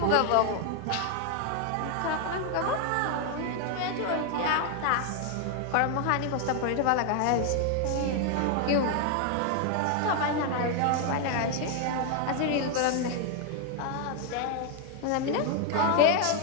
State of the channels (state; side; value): different; both; correlation 0.00